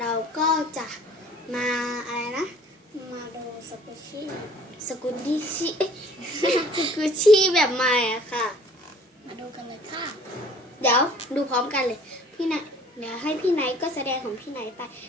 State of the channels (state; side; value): normal; both; correlation 0.53